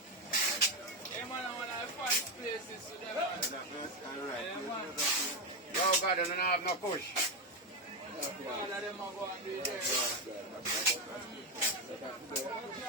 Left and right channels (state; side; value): normal; both; correlation 0.09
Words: Hey, man, I want to find places to them, man. Yeah, man. Yo, God, you don't have no push. All of them are going to be there.